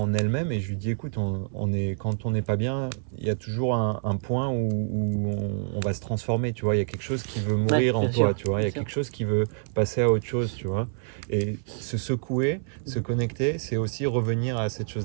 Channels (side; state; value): left; silent; 57 dB below the other